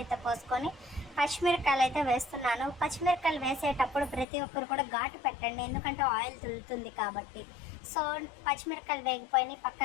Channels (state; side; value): drops out; right; at 4.2 s